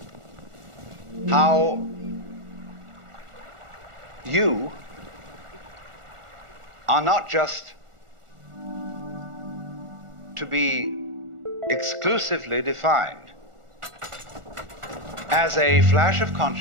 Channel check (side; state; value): left; late; 1.4 ms